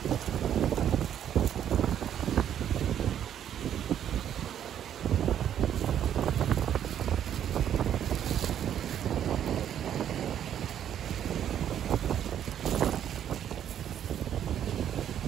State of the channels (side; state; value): left; quieter; 9.9 dB